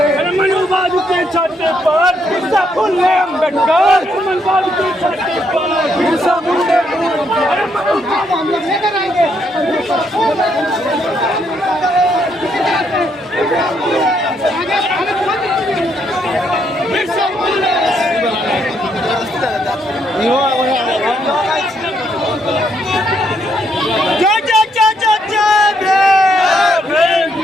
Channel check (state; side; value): normal; both; correlation 0.74